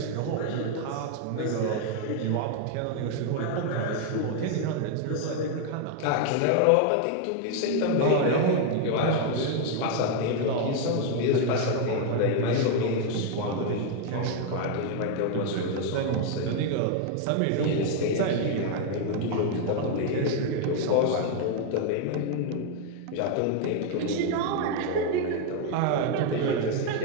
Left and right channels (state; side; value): different; both; correlation 0.00